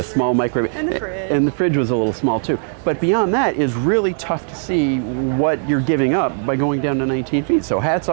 small microwave. And the fridge. And the fridge was a little small too. But beyond that is really tough to see what you're giving up by going down to 19 feet. So hats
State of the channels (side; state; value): left; silent; digital silence